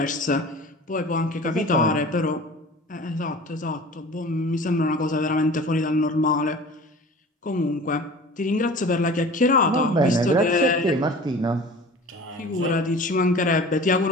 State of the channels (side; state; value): both; normal; correlation 0.41